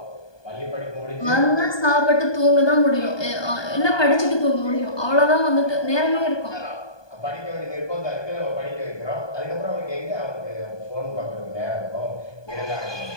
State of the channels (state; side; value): late; right; 1.2 ms